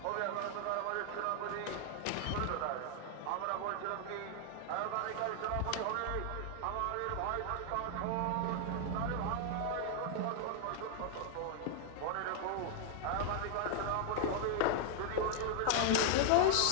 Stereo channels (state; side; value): different; both; correlation 0.00